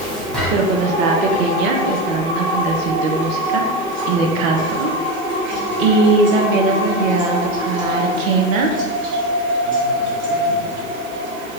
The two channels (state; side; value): noise; right; hiss, 22 dB below the sound